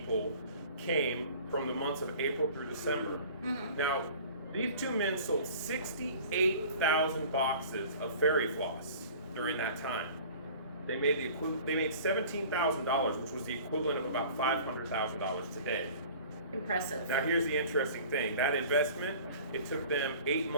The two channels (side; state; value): both; inverted; correlation -0.45